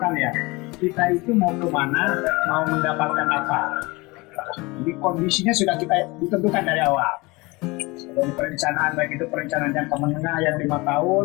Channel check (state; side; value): quieter; right; 24.0 dB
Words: ya. Kita itu mau kemana, mau mendapatkan apa. Jadi kondisinya sudah kita ditentukan dari awal. Dari perencanaan, baik itu perencanaan jangka menengah yang 5 tahun